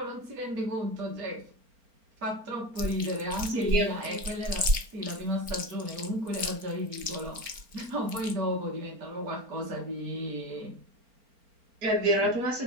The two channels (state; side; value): late; left; 4.4 ms